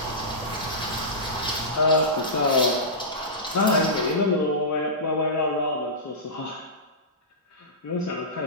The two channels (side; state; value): both; normal; correlation -0.17